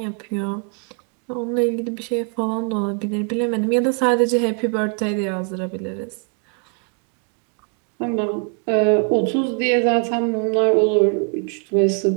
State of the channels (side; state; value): left; quieter; 39.1 dB